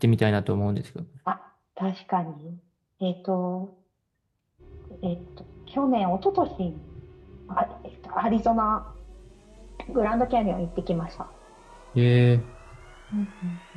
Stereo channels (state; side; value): identical; both; correlation 1.00